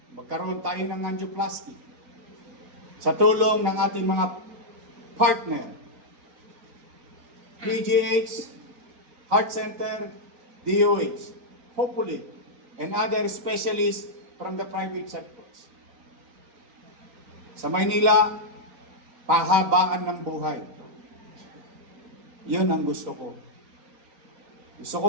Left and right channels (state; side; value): late; left; 3.9 ms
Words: magkaroon tayo ng angioplasty sa tulong ng ating mga partner PGH, Heart Center, DOH, hopefully, and other specialists from the private sectors. Sa Maynila, pahabaan ng buhay. Yun ang gusto ko. Gusto ko